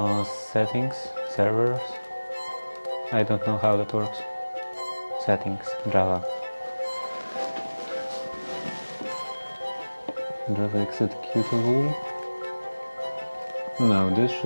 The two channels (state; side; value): inverted; both; correlation -1.00